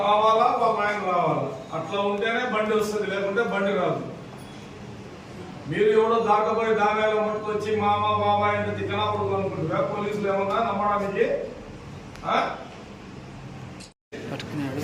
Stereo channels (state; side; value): identical; both; correlation 1.00